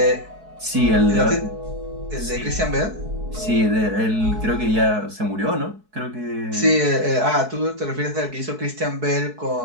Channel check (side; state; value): left; late; 4.6 ms